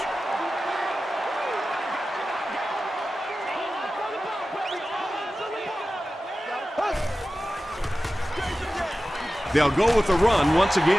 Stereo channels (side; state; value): both; normal; correlation 0.94